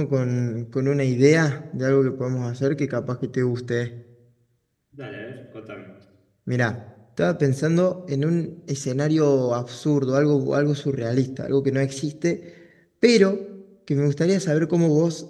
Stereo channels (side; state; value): both; identical; correlation 1.00